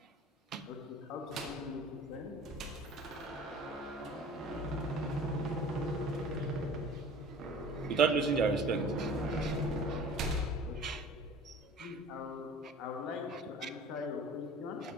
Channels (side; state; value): both; normal; correlation 0.44